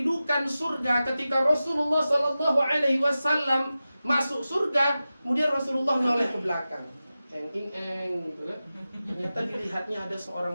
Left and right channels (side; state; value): both; inverted; correlation -0.94